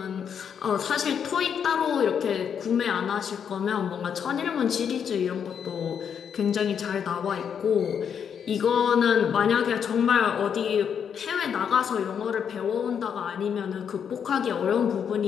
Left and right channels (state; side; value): quieter; right; 7.6 dB